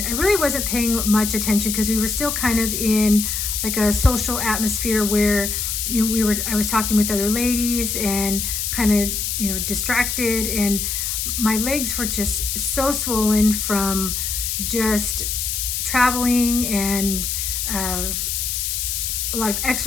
I really wasn't paying much attention because we were still kind of in like a social atmosphere where I was talking with other ladies and kind of distracted, and my legs were just so swollen from just traveling and a lot of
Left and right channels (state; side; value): noise; left; hiss, 1 dB below the sound